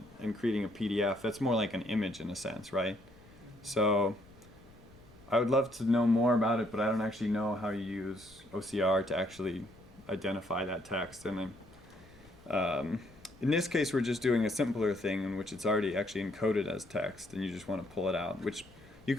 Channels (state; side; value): noise; left; rumble, 25 dB below the sound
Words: and creating a PDF, that's more like an image in a sense, right? So I would love to know more about it, but I don't actually know how you use OCR to actually identify that text. And in this case, we're just doing a simpler thing in which it's already actually encoded as text, and you just want to pull it out, which you